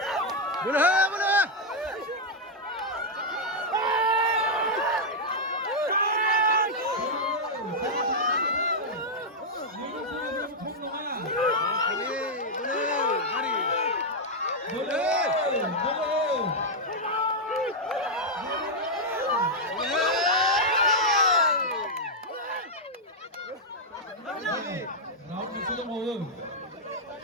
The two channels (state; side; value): normal; both; correlation -0.03